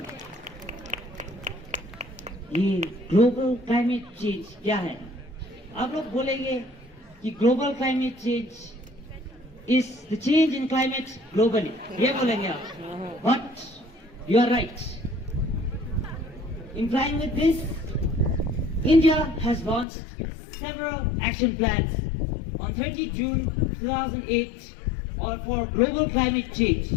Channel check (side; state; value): right; drops out; at 19.9 s